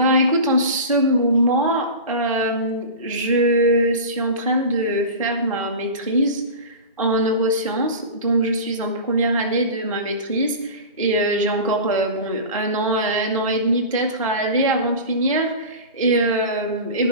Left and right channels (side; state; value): both; inverted; correlation -0.31